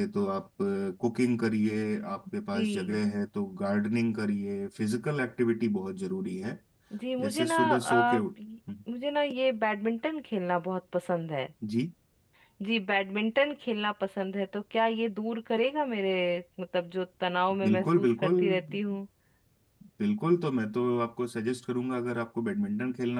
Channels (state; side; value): identical; both; correlation 1.00